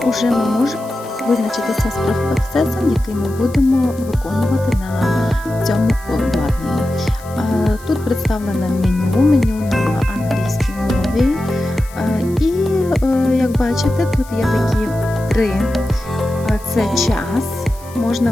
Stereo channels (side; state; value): left; noise; hiss, 22 dB below the sound